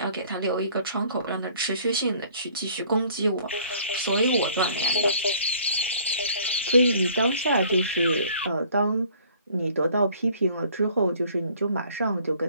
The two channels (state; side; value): inverted; both; correlation -0.56